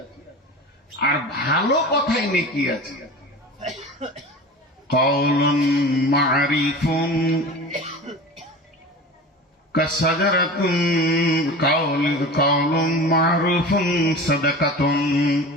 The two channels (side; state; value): both; normal; correlation 0.34